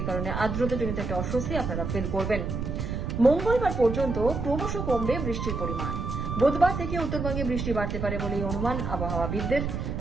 কারণে আর্দ্রতাজনিত একটা অস্বস্তি আপনারা ফিল করবেন। মঙ্গলবার পর্যন্ত ক্রমশ কমবে বৃষ্টির পরিমাণ। বুধবার থেকে উত্তরবঙ্গে বৃষ্টি বাড়তে পারে বলেই অনুমান আবহাওয়াবিদদের।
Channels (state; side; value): noise; right; rumble, 3 dB below the sound